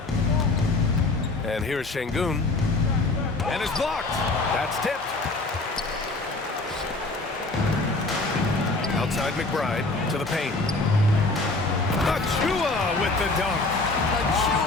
And here's Şengün. And it's blocked. That's tipped. Outside McBride to the paint. Achua with the dunk.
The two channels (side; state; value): right; quieter; 3.2 dB